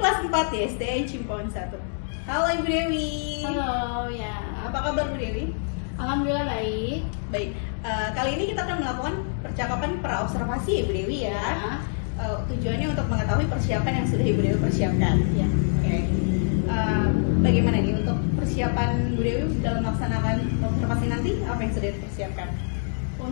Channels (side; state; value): right; silent; digital silence